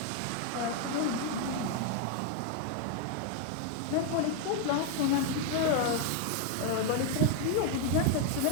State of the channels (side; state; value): both; different; correlation 0.01